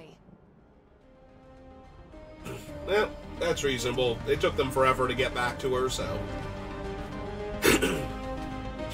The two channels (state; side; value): identical; both; correlation 1.00